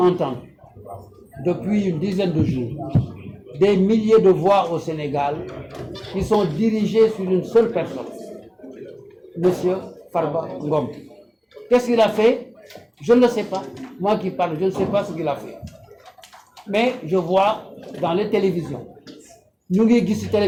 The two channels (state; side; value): identical; both; correlation 1.00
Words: depuis une dizaine de jours, des milliers de voix au Sénégal qui sont dirigées sur une seule personne, Monsieur Farba Ngom. Qu'est-ce qu'il a fait? Je ne le sais pas. Moi qui parle, je ne sais pas ce qu'il a fait. Mais je vois dans les télévisions, ñu ngi gis ci